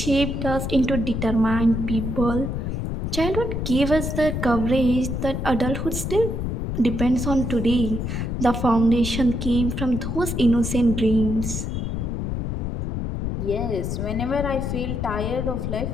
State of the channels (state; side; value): noise; left; rumble, 3 dB below the sound